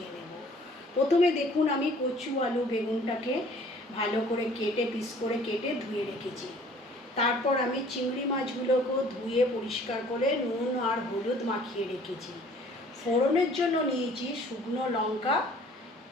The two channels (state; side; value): normal; both; correlation 0.54